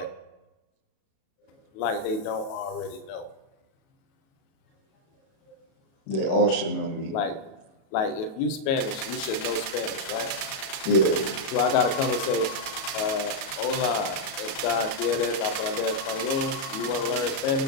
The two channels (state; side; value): late; right; 37 ms